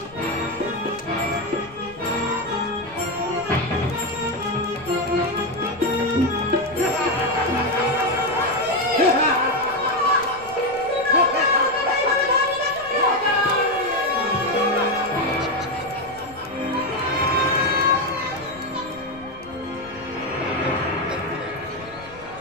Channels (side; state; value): left; noise; rumble, 22 dB below the sound